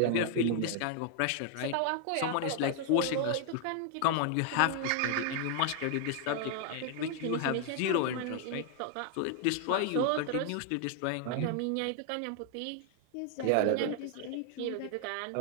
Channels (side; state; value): both; different; correlation 0.00